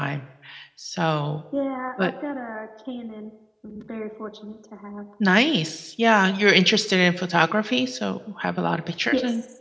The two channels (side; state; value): both; identical; correlation 1.00